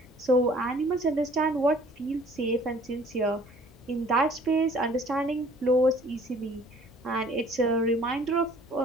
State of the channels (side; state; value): both; normal; correlation 0.54